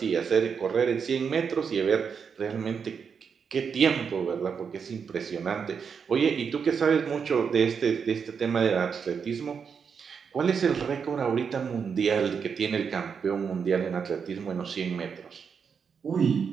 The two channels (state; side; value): quieter; left; 6.4 dB